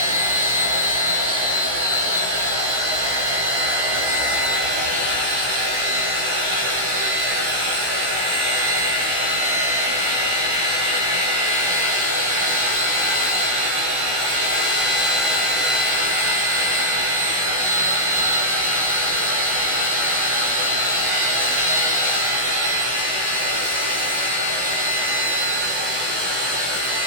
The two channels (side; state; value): left; late; 16 ms